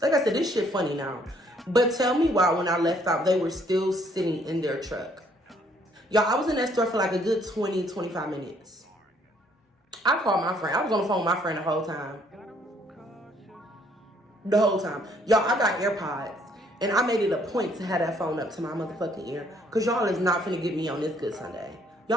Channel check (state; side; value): normal; both; correlation 0.65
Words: Like I said, this shit funny now. But tell me why when I left out, they were still sitting in their truck. Y'all, I was in that store for like a good 20, 25 minutes. I called my friend. I was on the phone with my friend the whole time. The whole time. Y'all, I got AirPods. And I made it a point to have that phone up to my motherfucking ear. Because y'all is not finna get me on this good Sunday.